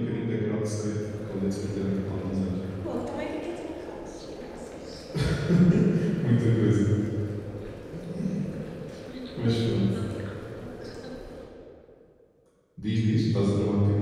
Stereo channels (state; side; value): identical; both; correlation 1.00